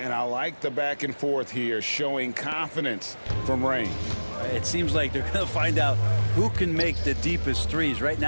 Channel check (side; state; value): both; inverted; correlation -1.00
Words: I like the back and forth here, showing confidence from range. It seems like they're going to find out who can make the deepest threes. Right